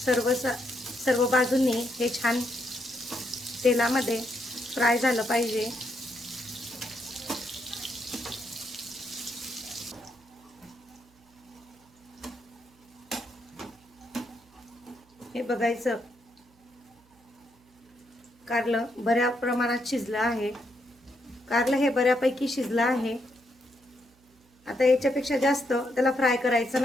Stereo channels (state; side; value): noise; right; hum, 30 dB below the sound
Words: सर्व बाजूंनी हे छान तेलामध्ये फ्राय झालं पाहिजे. हे बघायचं कारलं बऱ्या प्रमाणात शिजलं आहे. कारलं हे बऱ्यापैकी शिजलं आहे. आता याच्यापेक्षा जास्त त्याला फ्राय करायचं